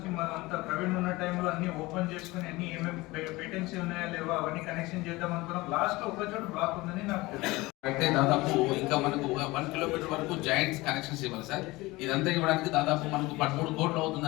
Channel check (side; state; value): right; quieter; 21.0 dB